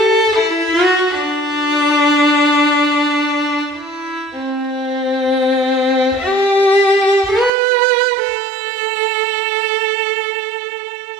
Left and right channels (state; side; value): drops out; left; at 7.5 s